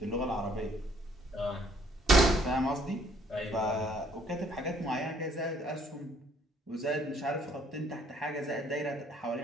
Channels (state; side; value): normal; both; correlation 0.63